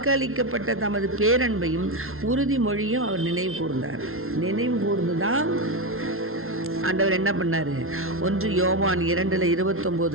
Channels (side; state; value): left; late; 0.62 ms